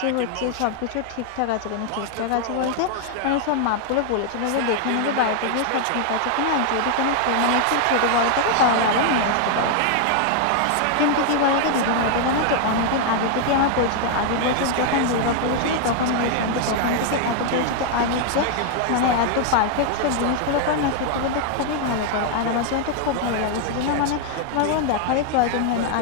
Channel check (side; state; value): both; different; correlation 0.00